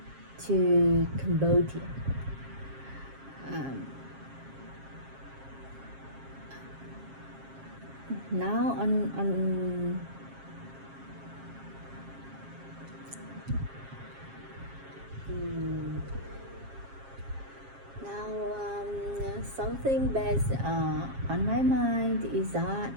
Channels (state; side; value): late; left; 7.4 ms